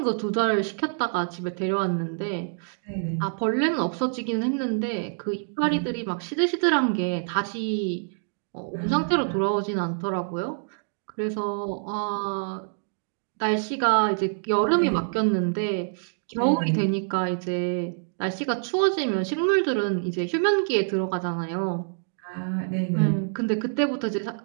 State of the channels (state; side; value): silent; left; digital silence